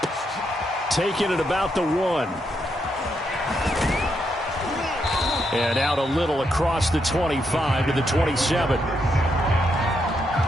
Taking it about the 1. And out a little across the 25 to the 27.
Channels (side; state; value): both; normal; correlation 0.79